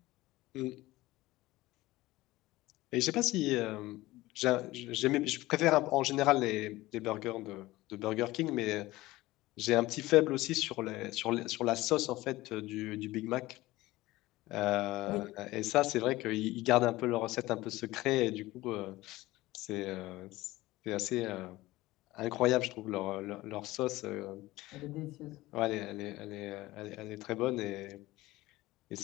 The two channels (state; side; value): quieter; right; 18.4 dB